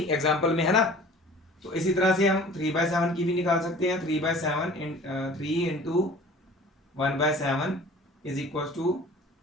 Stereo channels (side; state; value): both; normal; correlation 0.46